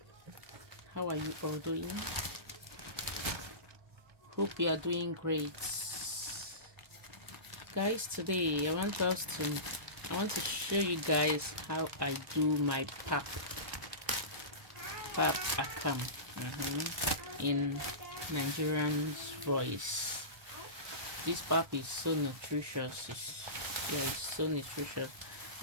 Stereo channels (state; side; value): late; left; 1.2 ms